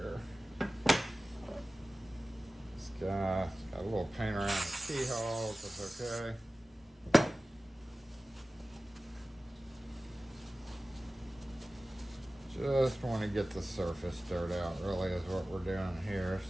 It's got a little paint around the keyhole, that's okay. Just want to get the surface dirt out, really, is what we're doing here.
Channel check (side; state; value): both; normal; correlation 0.96